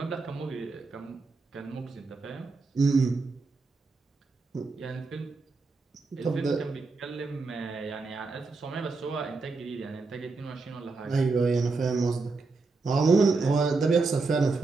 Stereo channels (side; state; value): left; quieter; 3.9 dB